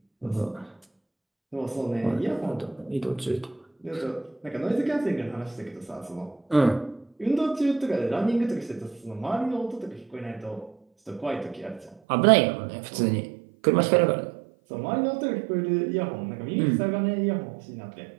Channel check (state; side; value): drops out; left; at 12.0 s